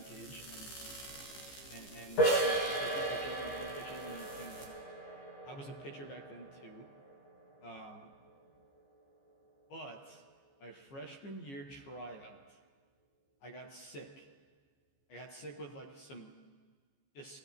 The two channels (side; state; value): right; late; 15 ms